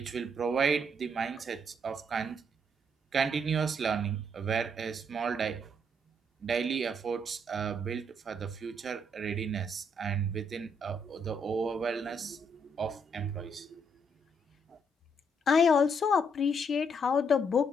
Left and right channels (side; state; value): both; normal; correlation 0.73